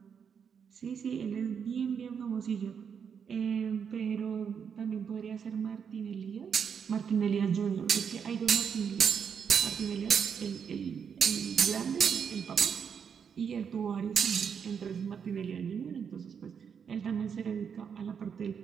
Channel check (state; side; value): quieter; left; 7.0 dB